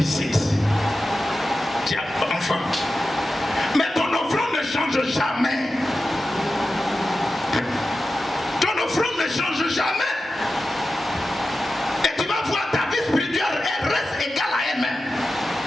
Tu as un enfant. Mais ton offrande ne change jamais. Ton offrande ne change jamais. Et tu vas voir ta vie spirituelle, elle reste égale à elle-même.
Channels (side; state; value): both; normal; correlation 0.93